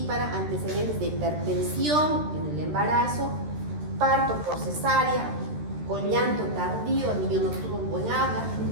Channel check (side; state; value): left; late; 13 ms